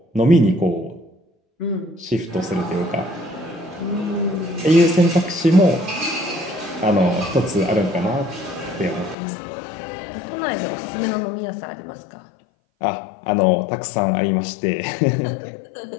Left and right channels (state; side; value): drops out; right; at 9.2 s